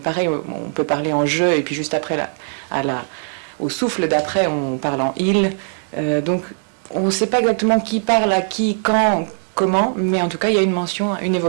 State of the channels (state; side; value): silent; left; 66 dB below the other